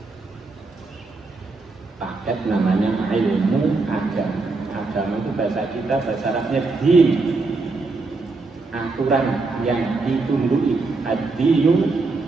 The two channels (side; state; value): left; quieter; 3.7 dB